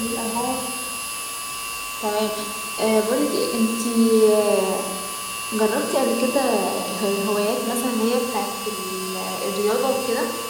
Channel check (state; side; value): identical; both; correlation 1.00